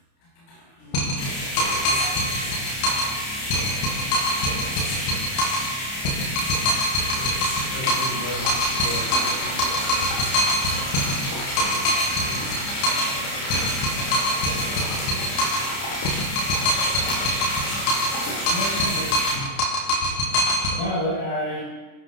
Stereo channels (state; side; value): late; right; 30 ms